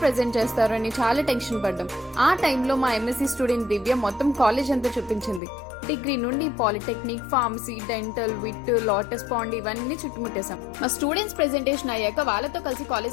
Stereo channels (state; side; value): drops out; right; at 5.4 s